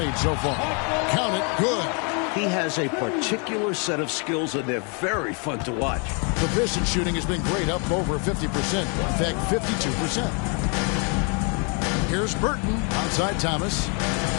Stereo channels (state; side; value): quieter; right; 36.1 dB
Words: so far. Count it, good. He has a particular set of skills, and they're very fun to watch. The Pistons shooting has been great, up over 50%. In fact, 52%. Here's Burton outside Thomas.